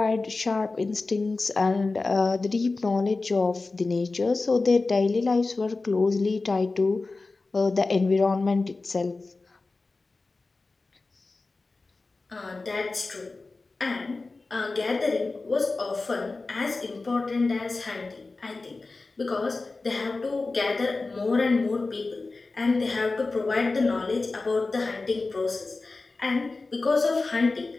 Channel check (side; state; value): right; quieter; 3.6 dB